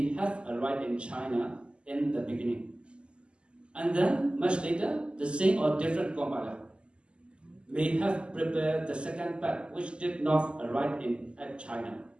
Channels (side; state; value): left; late; 0.052 ms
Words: have arrived in China in the beginning, and then much later the same or different compiler may have prepared the second part which did not arrive at China.